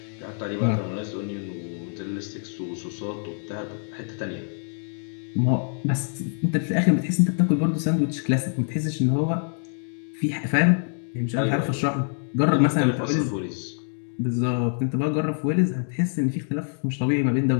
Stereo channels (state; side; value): silent; right; 62 dB below the other